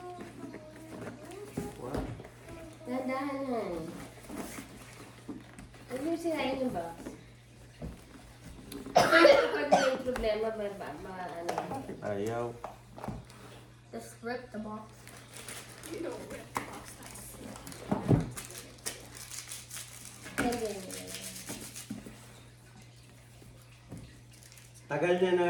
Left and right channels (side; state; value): both; identical; correlation 1.00